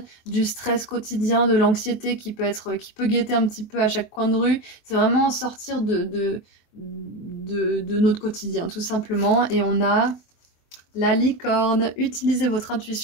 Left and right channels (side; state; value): right; late; 23 ms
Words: du stress quotidien, de l'anxiété qui peut guetter un petit peu à chaque coin de rue. C'est vraiment sortir de notre quotidien, tout simplement. Et on a la licorne. Utilisez votre